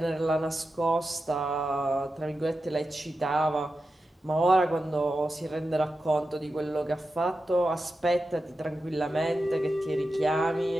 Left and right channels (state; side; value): normal; both; correlation 0.91